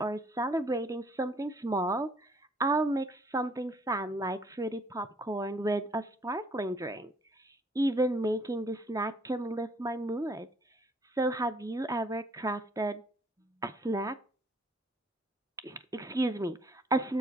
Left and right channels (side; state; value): both; normal; correlation 0.63